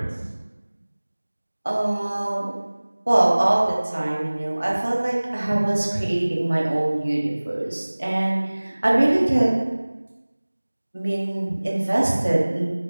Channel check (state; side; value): inverted; both; correlation -1.00